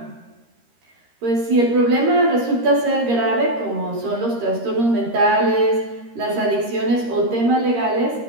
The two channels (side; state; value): left; late; 13 ms